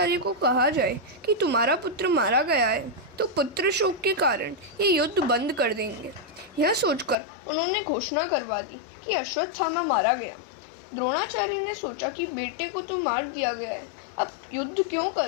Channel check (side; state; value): right; drops out; at 7.2 s